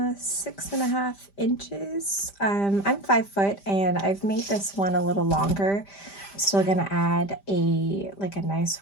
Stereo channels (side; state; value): right; late; 5.0 ms